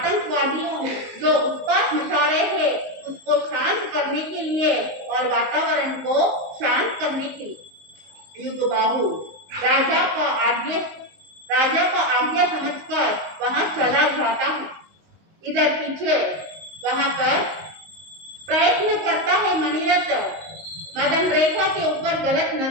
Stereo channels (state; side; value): late; left; 19 ms